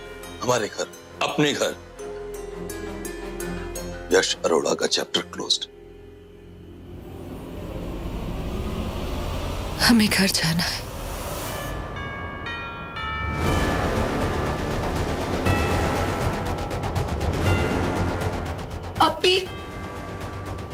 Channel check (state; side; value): identical; both; correlation 1.00